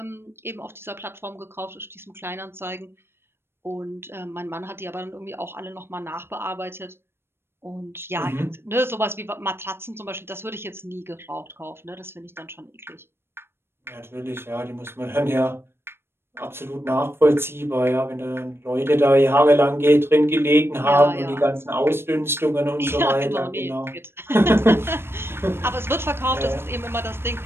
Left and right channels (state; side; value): late; left; 0.12 ms